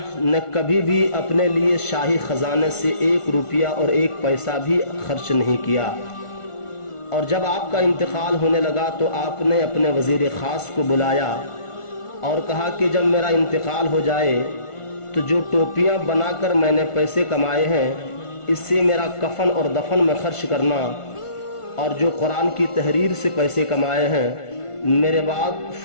ने कभी भी अपने लिए शाही ख़जाने से 1 रुपया और 1 पैसा भी खर्च नहीं किया। और जब आपका इंतकाल होने लगा तो आपने अपने वज़ीर ख़ास को बुलाया और कहा कि जब मेरा इंतकाल हो जाए तो जो टोपियाँ बनाकर मैंने पैसे कमाए हैं, इससे मेरा कफन और दफन में खर्च करना, और जो कुरान की तहरीर से पैसे कमाए हैं मेरे बाद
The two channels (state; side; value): late; right; 1.5 ms